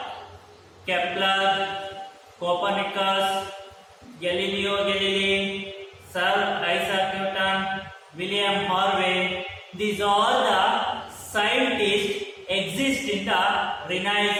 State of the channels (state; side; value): identical; both; correlation 1.00